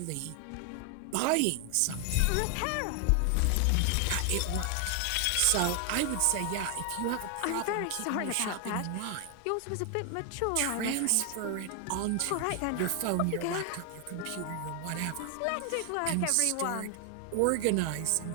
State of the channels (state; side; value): different; both; correlation 0.00